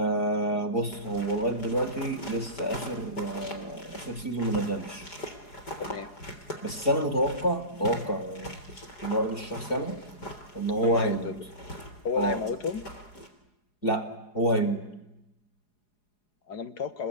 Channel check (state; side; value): late; right; 4.8 ms